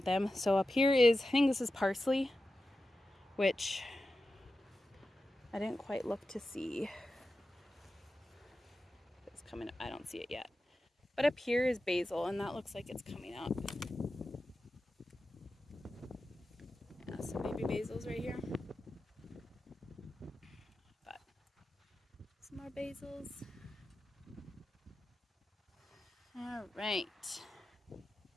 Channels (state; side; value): normal; both; correlation 0.92